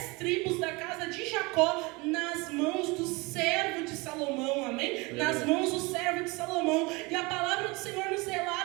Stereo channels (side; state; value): left; quieter; 25.6 dB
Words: tribos da casa de Jacó nas mãos do servo de Salomão, amém? Nas mãos do servo de Salomão. E a palavra do Senhor nos